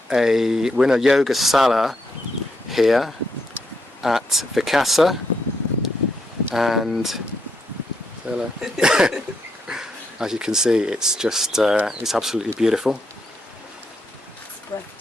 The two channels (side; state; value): both; normal; correlation 0.79